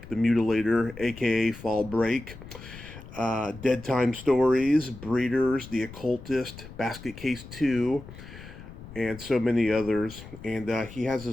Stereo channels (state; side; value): noise; left; rumble, 15 dB below the sound